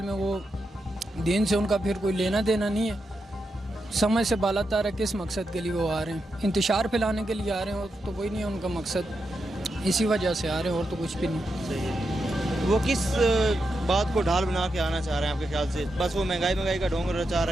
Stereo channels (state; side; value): normal; both; correlation 0.86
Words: में वो दीन से उनका फिर कोई लेना देना नहीं है। समझ से बालातर है किस मकसद के लिए वो आ रहे हैं, इंतशार फैलाने के लिए आ रहे हैं, और तो कोई नहीं है उनका मकसद, इसी वजह से आ रहे हैं और तो कुछ भी नहीं। वो किस बात को ढाल बना के आना चाह रहे हैं आपके ख्याल से? बस वो महंगाई का ढोंग रचा